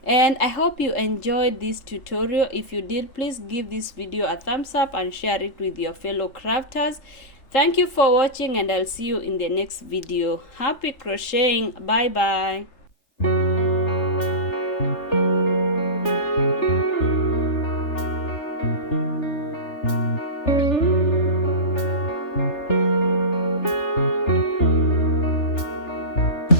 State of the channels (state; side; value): late; right; 3.3 ms